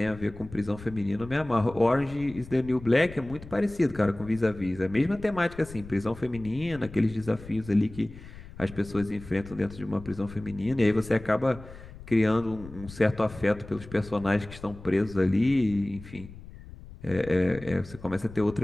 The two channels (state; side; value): noise; left; rumble, 16 dB below the sound